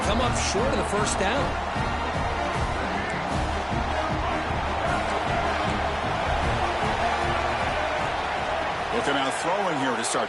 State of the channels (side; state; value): both; identical; correlation 1.00